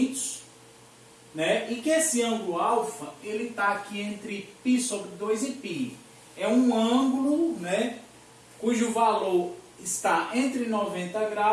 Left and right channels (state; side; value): identical; both; correlation 1.00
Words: né, e que esse ângulo alfa, ele está aqui entre π sobre 2 e π. É um ângulo, né, cujo valor está entre 90